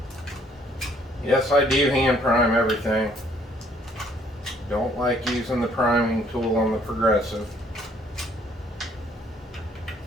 Yes, I do hand prime everything. Don't like using the priming tool on the Progressive.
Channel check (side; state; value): both; normal; correlation 0.63